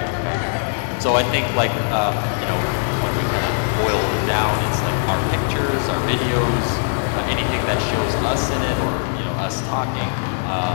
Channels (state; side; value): silent; right; digital silence